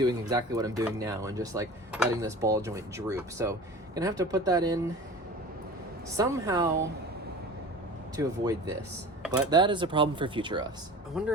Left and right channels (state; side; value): normal; both; correlation 0.38